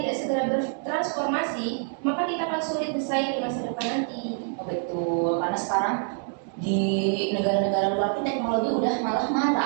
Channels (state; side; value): silent; left; 58 dB below the other